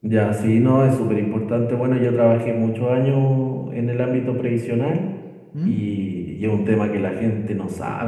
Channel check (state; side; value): identical; both; correlation 1.00